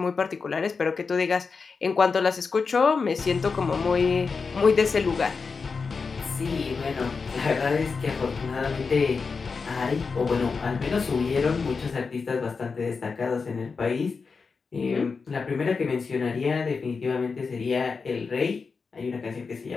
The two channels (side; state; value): right; quieter; 4.9 dB